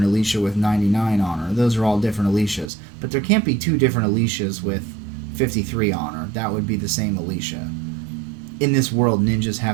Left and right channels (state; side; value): drops out; left; at 2.7 s